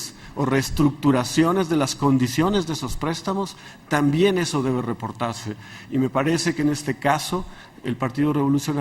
o reestructuraciones de las condiciones de esos préstamos, también eso debe reportarse. Y me parece que en este caso el Partido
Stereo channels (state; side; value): identical; both; correlation 1.00